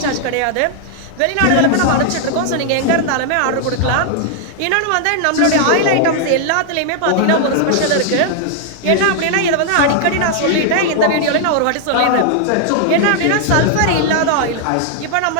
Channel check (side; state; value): both; different; correlation 0.00